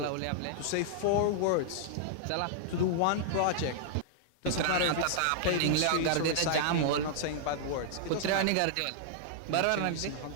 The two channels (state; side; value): different; both; correlation -0.01